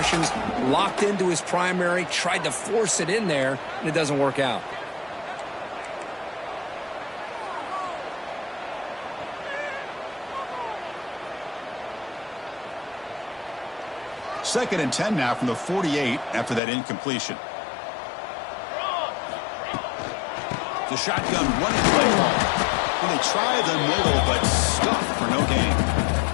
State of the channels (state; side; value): drops out; right; at 16.6 s